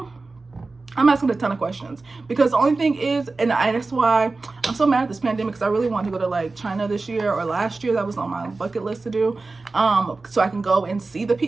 I'm asking a ton of questions, because the only thing is, and that's why I'm so mad at this pandemic, because I really wanted to go to like China this year or last year. That was on my bucket list to do, so I can go and see the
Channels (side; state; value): left; quieter; 3.7 dB